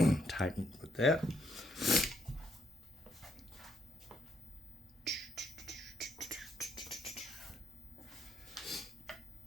tighten with that.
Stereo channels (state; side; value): normal; both; correlation 0.74